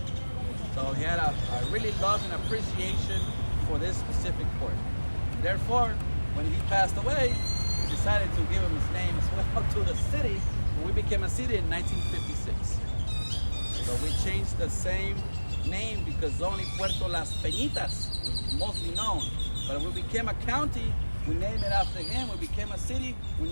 So he had a really love and appreciation for this specific port. Therefore, when he passed away, we decided to give him his name as well to the city. We became a city in 1956. So we changed the same name because only Puerto Las Peñitas was mostly known. But we became a county, we named it after him. We became a city, we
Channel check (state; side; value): inverted; both; correlation -1.00